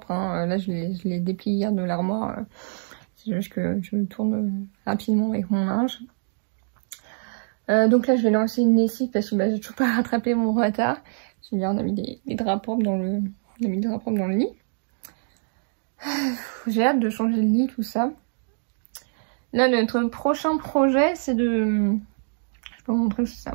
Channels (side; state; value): left; silent; digital silence